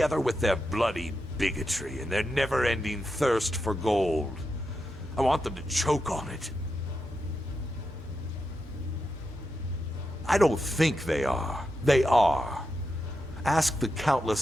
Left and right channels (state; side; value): normal; both; correlation 0.87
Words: with their bloody bigotry and their never-ending thirst for gold. I want them to choke on it. I don't think they are. They are. Ask the